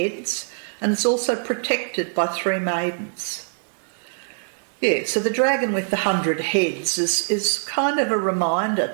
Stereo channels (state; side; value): silent; left; digital silence